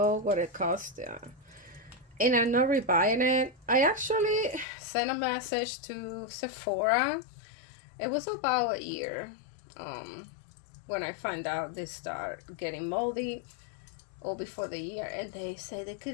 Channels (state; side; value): drops out; right; at 4.7 s